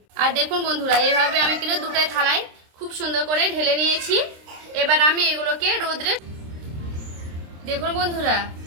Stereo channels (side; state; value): left; late; 26 ms